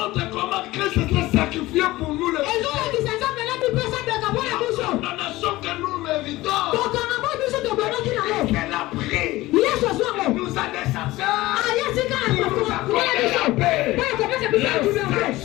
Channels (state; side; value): quieter; right; 18.4 dB